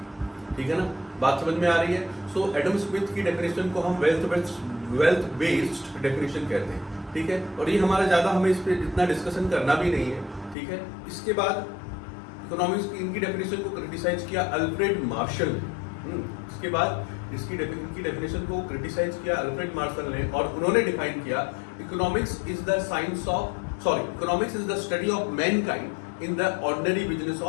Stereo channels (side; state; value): right; drops out; at 10.6 s